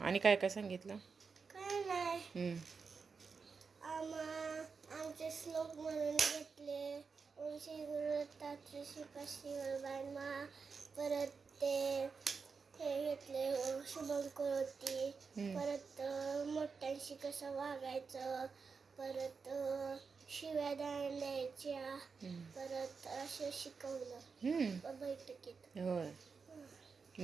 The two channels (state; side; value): quieter; left; 5.2 dB